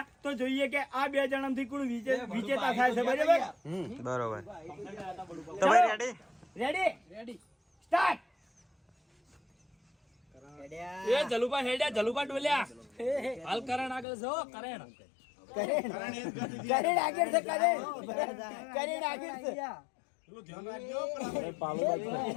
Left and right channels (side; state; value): right; drops out; at 14.1 s